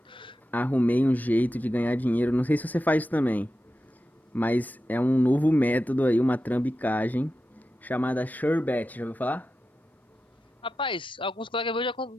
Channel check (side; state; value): both; normal; correlation 0.91